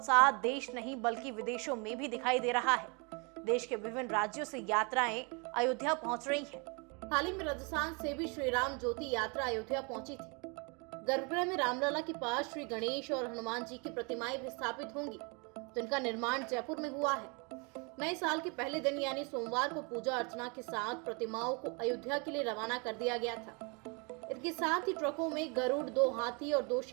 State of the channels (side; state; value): left; quieter; 32.1 dB